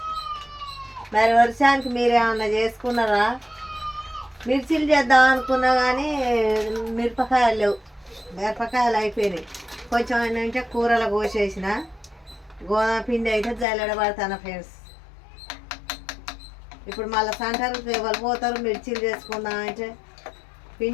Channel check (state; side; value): drops out; right; at 13.7 s